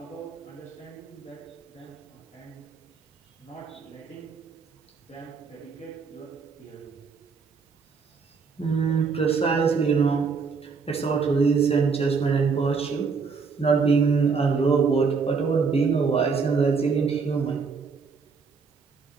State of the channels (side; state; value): left; quieter; 5.2 dB